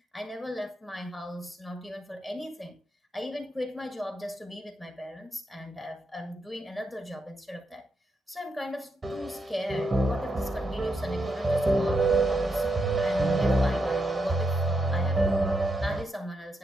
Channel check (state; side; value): normal; both; correlation 0.82